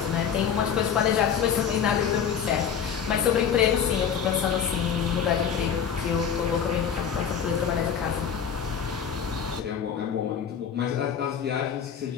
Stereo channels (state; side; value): quieter; right; 7.6 dB